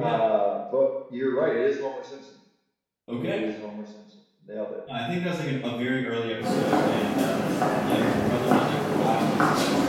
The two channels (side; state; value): both; identical; correlation 1.00